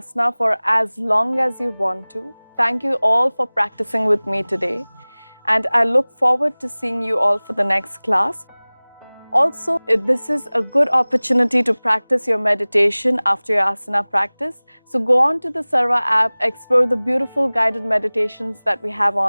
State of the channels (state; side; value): inverted; both; correlation -1.00